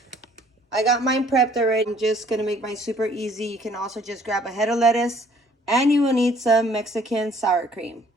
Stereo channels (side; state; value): both; normal; correlation 0.59